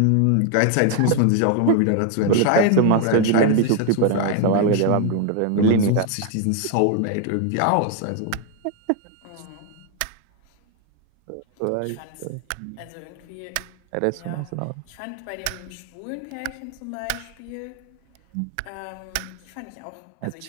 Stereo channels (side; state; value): both; different; correlation 0.01